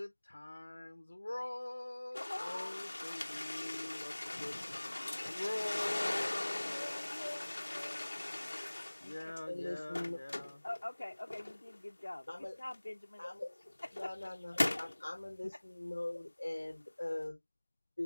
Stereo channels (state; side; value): inverted; both; correlation -1.00